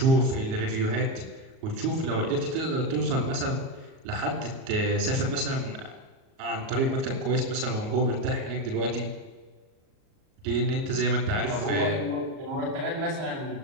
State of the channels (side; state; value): left; late; 37 ms